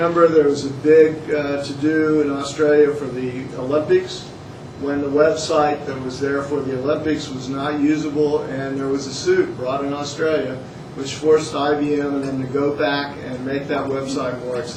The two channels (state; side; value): identical; both; correlation 1.00